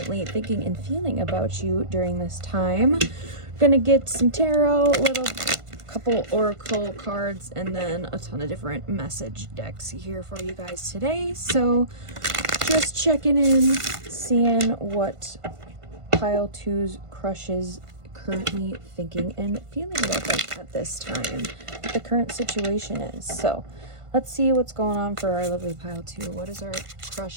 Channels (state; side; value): late; left; 1.5 ms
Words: thinking and feeling about you during this time. Gonna get some tarot, little couple oracle cards, and then a ton of different message decks here for you guys today. So just checking in, seeing what pile 2's crush is currently thinking and feeling about them at this time, what the current situation is. So let's see what's going on for our lovely pile 2. What is our